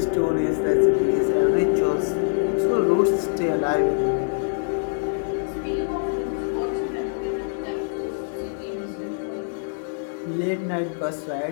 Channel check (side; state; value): right; silent; 60 dB below the other